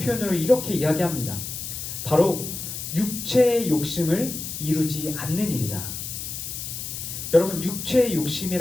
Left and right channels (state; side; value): noise; left; hiss, 7 dB below the sound